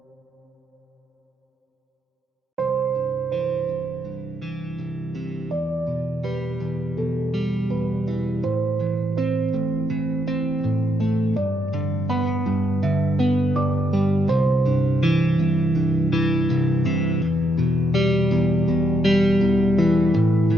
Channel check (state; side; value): normal; both; correlation 0.77